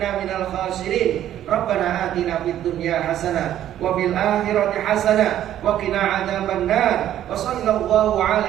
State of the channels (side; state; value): left; quieter; 11.7 dB